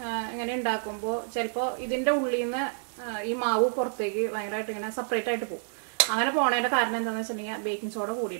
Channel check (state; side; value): silent; left; digital silence